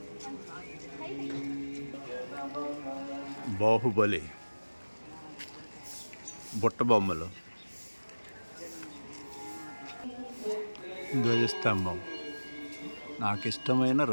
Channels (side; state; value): both; inverted; correlation -1.00